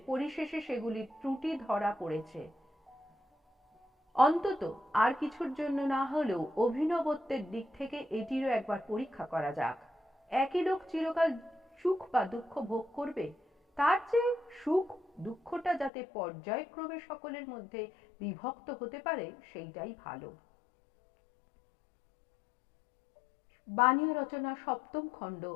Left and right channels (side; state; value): right; drops out; at 15.9 s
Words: পরিশেষে সেগুলির ত্রুটি ধরা পড়েছে। অন্তত আর কিছুর জন্য না হলেও অভিনবত্বের দিক থেকে এটিরও একবার পরীক্ষা করা যাক। একই লোক চিরকাল সুখ বা দুঃখ ভোগ করবে, তার চেয়ে সুখ দুঃখটা যাতে পর্যায়ক্রমে সকলের মধ্যে বিভক্ত হতে পারে সেইটাই ভালো। বাণীয় রচনা সপ্তম খণ্ড,